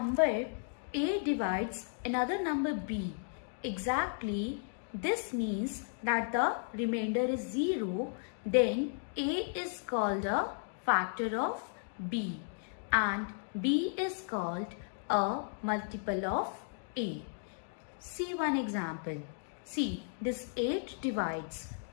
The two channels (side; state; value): right; silent; digital silence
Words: A divides another number B exactly, this means that the remainder is 0, then A is called a factor of B and B is called a multiple of A. See one example. See, this 8 divides